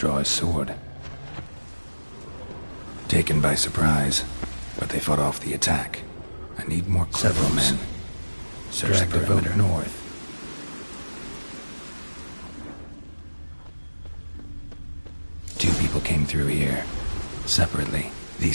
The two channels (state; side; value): inverted; both; correlation -1.00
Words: his sword. Taken by surprise, but they fought off the attack. I need more several men. Search the perimeter north. Two people came through here, separately.